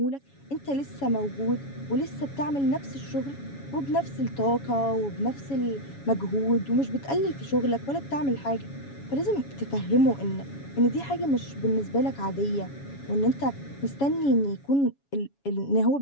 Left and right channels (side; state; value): right; late; 7.2 ms